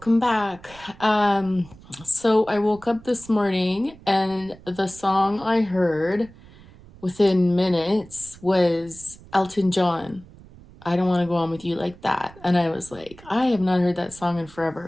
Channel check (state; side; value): noise; right; rumble, 22 dB below the sound